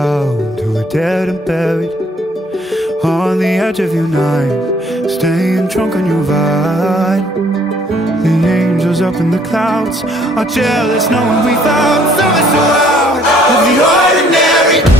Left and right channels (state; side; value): normal; both; correlation 0.62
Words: to a dead and buried on the edge of your night, staying drunk on your vine. The angels up in the clouds are jealous knowing we found something so out of the ordinary.